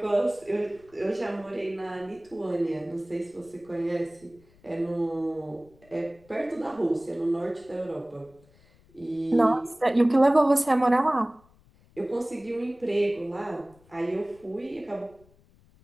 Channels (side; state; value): left; noise; rumble, 29 dB below the sound